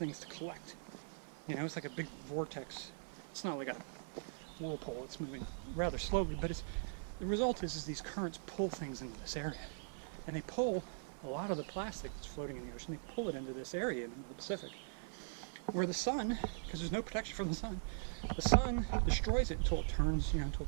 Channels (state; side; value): silent; left; 50 dB below the other